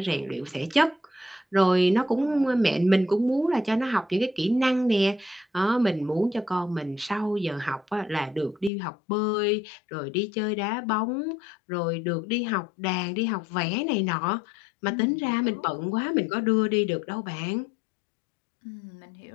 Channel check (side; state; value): right; drops out; at 8.7 s